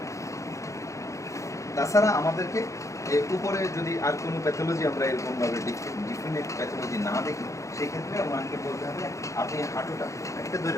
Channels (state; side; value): late; right; 0.15 ms